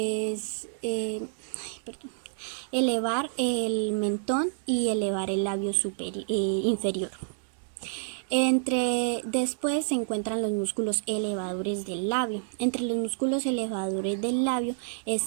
elevar el mentón y elevar el labio inferior. Después se encuentran los músculos elevadores del labio. Entre los músculos elevadores del labio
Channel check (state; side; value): silent; left; digital silence